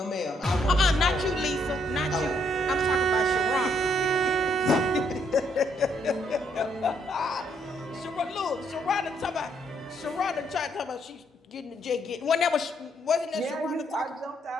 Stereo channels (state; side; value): normal; both; correlation 0.72